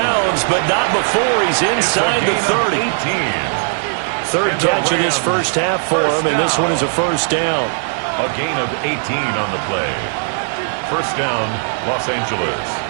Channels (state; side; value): silent; left; 68 dB below the other